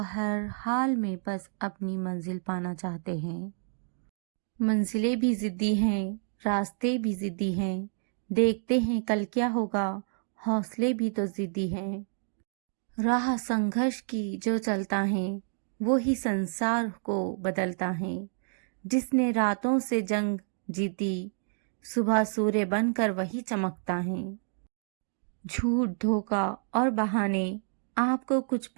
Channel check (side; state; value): left; silent; digital silence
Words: हाल में बस अपनी मंजिल पाना चाहते हैं। मंजिलें भी जिद्दी हैं, रास्ते भी जिद्दी हैं। देखते हैं कल क्या होगा, हौसले भी तो जिद्दी हैं। राह संघर्ष की जो चलता है, वो ही संसार को बदलता है। जिसने रातों से जंग जीती, सुबह सूर्य बनकर वही चमकता है। झूठ, धोखा और बहाने आपको कुछ